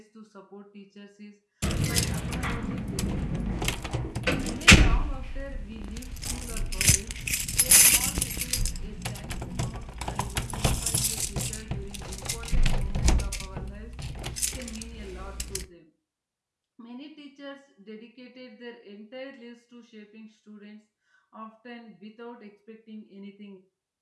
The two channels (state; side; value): identical; both; correlation 1.00